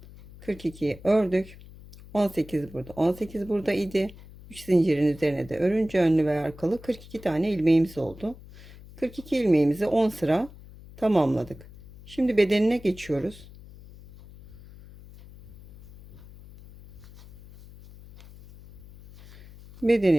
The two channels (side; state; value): left; noise; hum, 19 dB below the sound